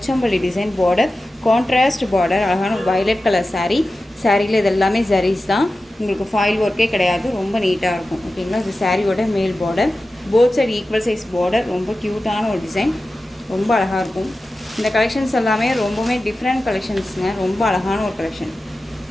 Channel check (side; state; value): both; normal; correlation 0.94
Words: design border, contrast border, அழகான வயலட் கலர் சாரீ. சாரியில் இது எல்லாமே ஜரீஸ் தான், உங்களுக்கு ஃபாயில் ஒர்க்கே கிடையாது, ரொம்ப நீட்டாக இருக்கும். ஓகேங்களா, இது சாரியோட மேல் border, both side equal size border, ரொம்ப க்யூட்டான ஒரு டிசைன், ரொம்ப அழகாக இருக்கும். இந்த கலெக்ஷன்ஸ் எல்லாமே ரொம்பவுமே டிஃப்ரெண்ட் கலெக்ஷன்ஸுங்க, ரொம்ப அழகான ஒரு கலெக்ஷன்.